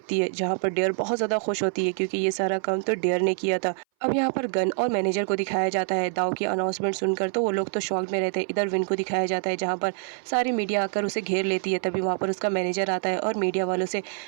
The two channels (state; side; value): silent; left; 59 dB below the other